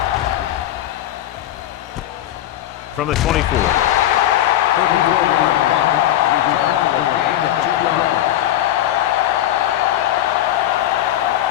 From the 24. 34-yard punt. Return for a gain of 2 yards.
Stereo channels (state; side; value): quieter; right; 12.8 dB